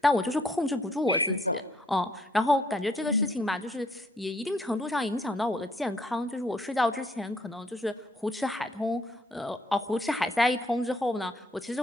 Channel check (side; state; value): both; normal; correlation 0.66